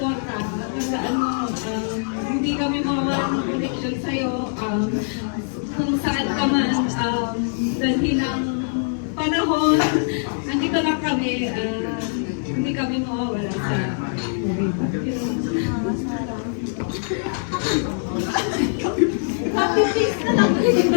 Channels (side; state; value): right; silent; 57 dB below the other